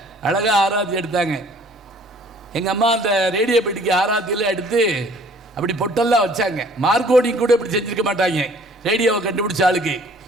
அழகாக ஆராத்தி எடுத்தாங்க. எங்கள் அம்மா அந்த ரேடியோ பெட்டிக்கு ஆராத்தியில் எடுத்து அப்படி பொட்டெல்லாம் வச்சாங்க. மார்க்கோடிங் கூட இப்படி செஞ்சுருக்க மாட்டாங்க ரேடியோவை கண்டுபிடிச்ச ஆளுக்கு.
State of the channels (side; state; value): both; normal; correlation 0.55